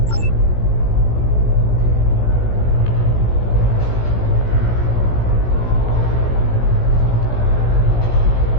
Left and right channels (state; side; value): late; right; 17 ms